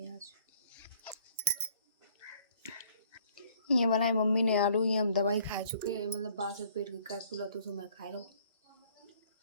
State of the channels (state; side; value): inverted; both; correlation -0.59